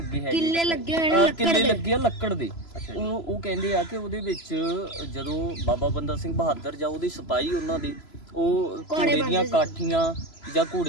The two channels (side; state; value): right; late; 3.0 ms